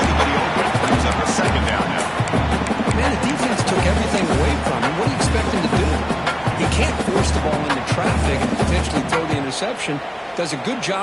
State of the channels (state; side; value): identical; both; correlation 1.00